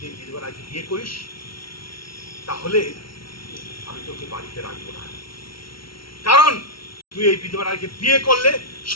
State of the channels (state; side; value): late; right; 0.74 ms